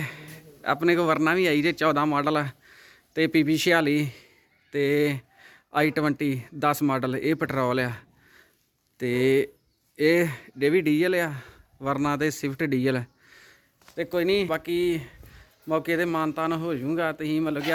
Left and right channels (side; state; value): both; identical; correlation 1.00